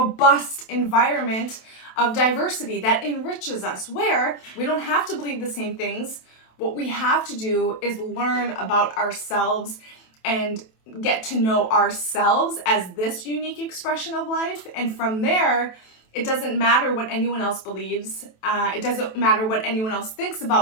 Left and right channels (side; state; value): right; late; 27 ms